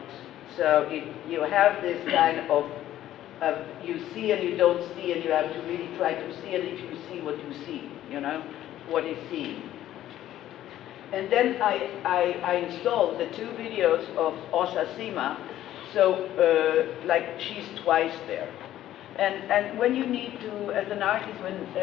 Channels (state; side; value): quieter; right; 12.9 dB